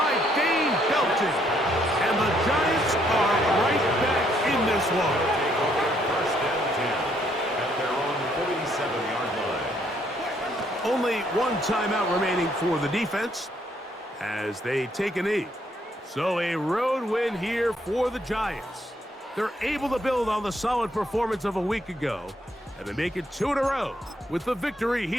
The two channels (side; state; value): both; normal; correlation 0.70